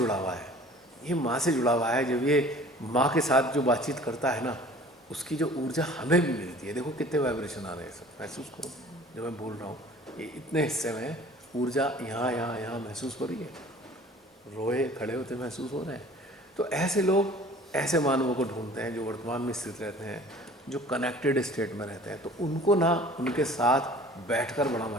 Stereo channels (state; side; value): normal; both; correlation 0.48